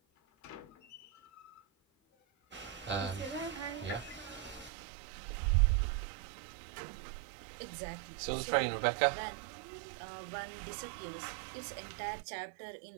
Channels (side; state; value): left; drops out; at 4.7 s